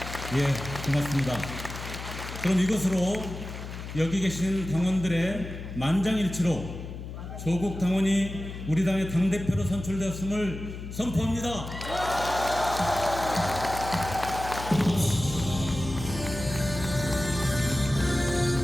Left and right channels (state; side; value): noise; left; hum, 9 dB below the sound